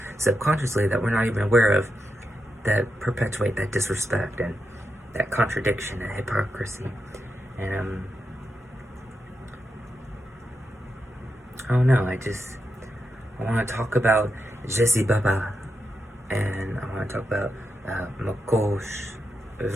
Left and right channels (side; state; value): both; normal; correlation 0.86